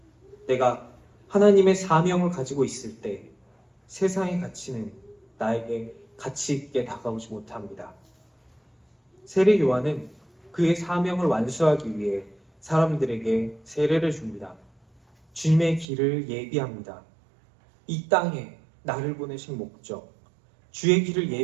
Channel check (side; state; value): left; drops out; at 15.9 s